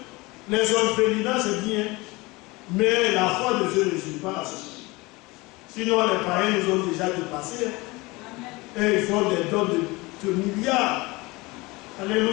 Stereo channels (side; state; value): right; quieter; 23.1 dB